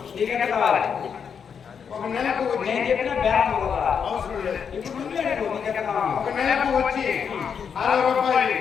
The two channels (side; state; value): right; quieter; 7.0 dB